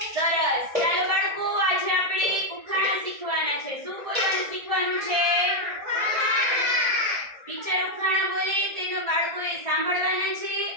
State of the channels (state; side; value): late; left; 1.7 ms